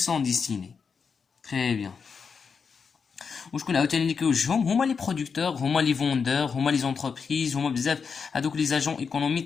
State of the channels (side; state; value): right; quieter; 5.8 dB